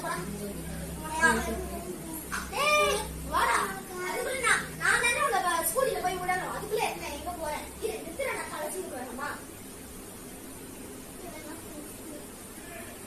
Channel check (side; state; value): both; identical; correlation 1.00